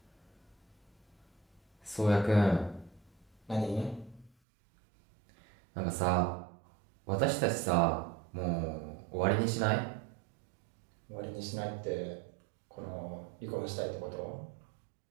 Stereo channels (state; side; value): drops out; left; at 4.3 s